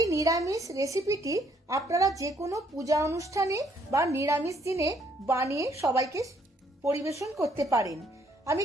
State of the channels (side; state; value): both; normal; correlation 0.67